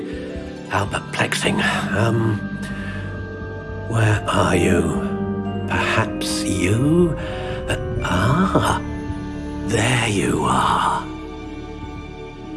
How perplexing. Where are you? Perhaps you? There you are.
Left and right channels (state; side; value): identical; both; correlation 1.00